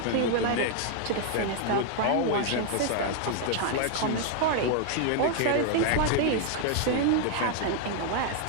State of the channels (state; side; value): different; both; correlation 0.00